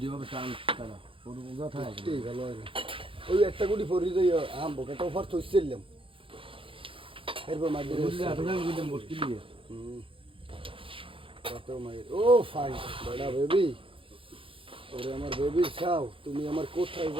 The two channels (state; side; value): late; left; 0.26 ms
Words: যেভাবে টান কাটা ওর কথা ভালো হয় না ওই একটা গুটি ফরি দিই আম বোকাটা ফার থইছিলাম এরপর মার দিয়ে মুশকিল দিয়ে কত মাই ও ফাইন বড়া বেবি ওরে আমার বেবি চাও তুমি আমার কোথায়